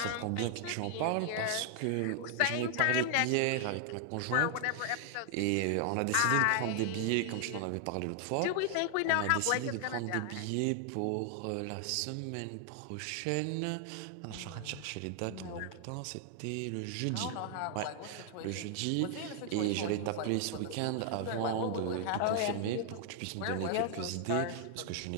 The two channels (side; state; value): both; different; correlation 0.00